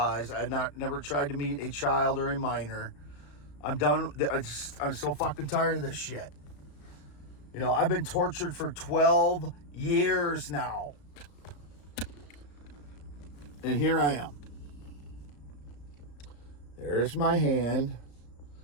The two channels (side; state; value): right; late; 34 ms